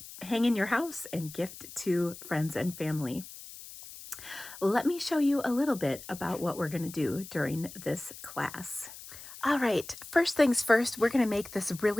hang in your house and gift to friends and family. Let me show you a little bit about what we're going to do during this class. All right, first things first, we're going to make this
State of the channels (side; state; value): left; noise; hiss, 15 dB below the sound